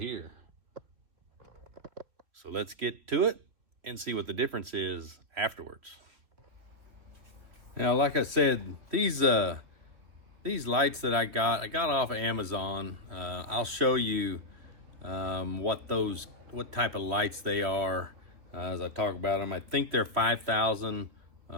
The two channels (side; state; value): left; late; 3.2 ms